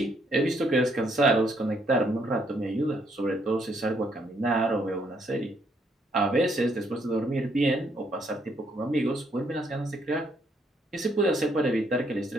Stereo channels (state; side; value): normal; both; correlation 0.71